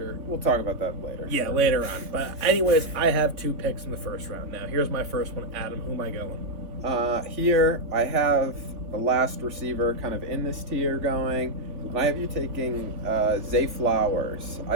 We'll talk about that later. Yeah, later on. But anyways, I have 2 picks in the first round. Now, here's my first one. Adam, who am I going? Here, I have the last receiver kind of in this tier going, and I have you taking Zay Flowers.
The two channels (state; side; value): late; left; 3.5 ms